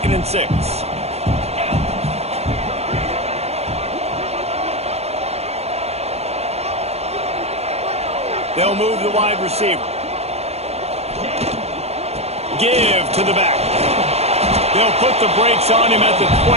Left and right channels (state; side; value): late; left; 0.31 ms